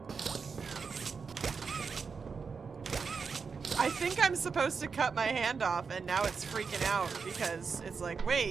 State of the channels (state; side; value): quieter; left; 5.4 dB